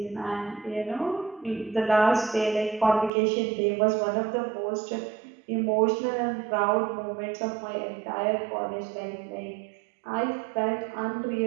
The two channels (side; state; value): left; drops out; at 3.1 s